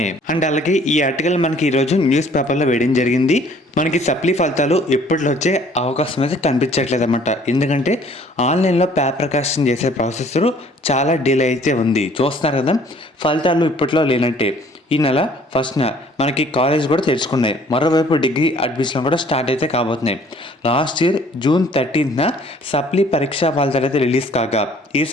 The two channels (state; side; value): normal; both; correlation 0.56